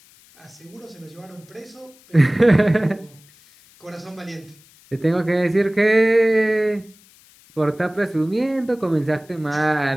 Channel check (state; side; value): noise; left; hiss, 27 dB below the sound